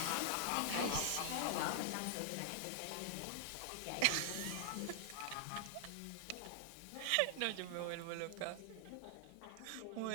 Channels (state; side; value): different; both; correlation -0.01